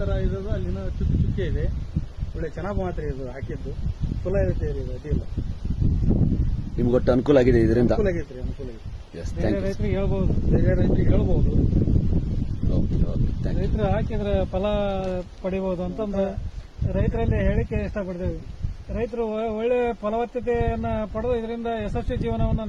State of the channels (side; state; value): both; identical; correlation 1.00